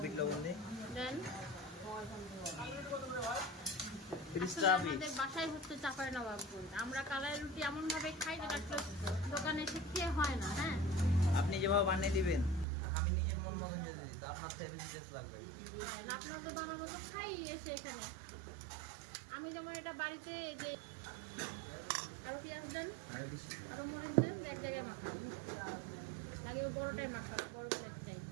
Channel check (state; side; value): drops out; left; at 12.7 s